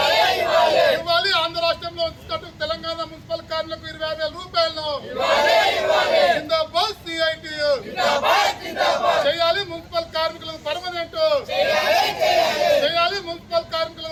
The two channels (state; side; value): identical; both; correlation 1.00